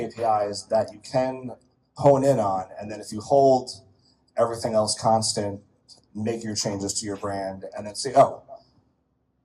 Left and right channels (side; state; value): both; identical; correlation 1.00